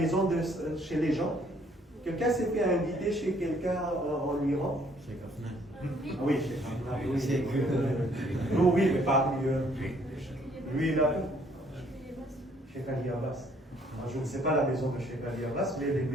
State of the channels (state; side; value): normal; both; correlation 0.64